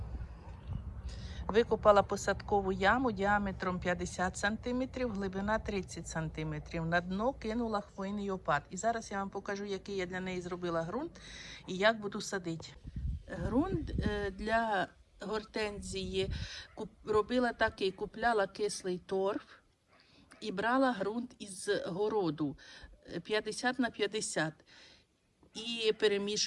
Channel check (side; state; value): both; identical; correlation 1.00